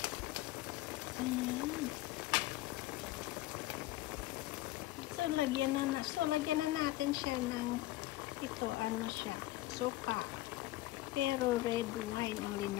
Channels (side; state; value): right; quieter; 16.7 dB